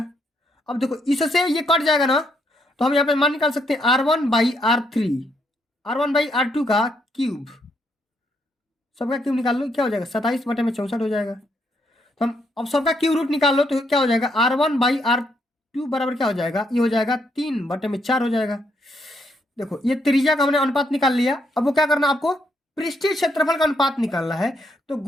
अब देखो इससे ये कट जाएगा ना, तो हम यहाँ पे मान निकाल सकते हैं R1/R3, R1/R2 का क्यूब, सबका क्यूब निकाल लो, क्या हो जाएगा 27 बटे में 64 हो जाएगा। तो हम अब सबका क्यूब रूट निकाल लो तो क्या हो जाएगा, R1/R2 बराबर क्या हो जाएगा, ये हो जाएगा 3 बटे में 4 हो जाएगा। देखो ये त्रिज्या का हमने अनुपात निकाल लिया, अब वो क्या करना, आपको पृष्ठीय क्षेत्रफल का अनुपात निकालना है। तो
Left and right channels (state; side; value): normal; both; correlation 0.74